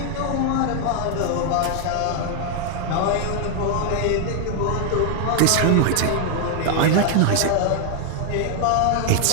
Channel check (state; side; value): different; both; correlation 0.00